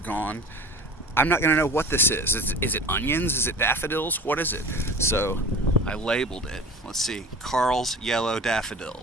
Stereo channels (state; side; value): normal; both; correlation 0.38